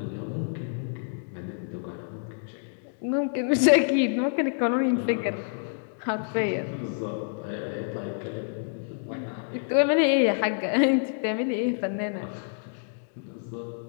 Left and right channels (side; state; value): right; silent; digital silence